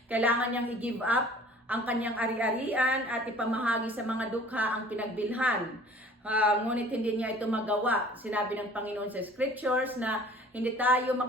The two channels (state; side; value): normal; both; correlation 0.49